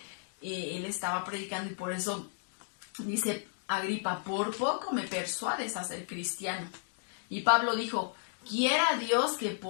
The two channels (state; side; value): silent; right; digital silence